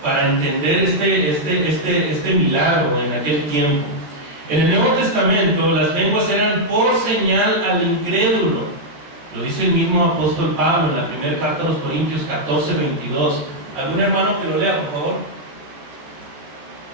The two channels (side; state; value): left; late; 14 ms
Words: Para entender este milagro en aquel tiempo. En el Nuevo Testamento, las lenguas eran por señal al incrédulo. Lo dice el mismo apóstol Pablo en la primera carta a los Corintios 14:22. ¿Algún hermano que lo lea, por favor?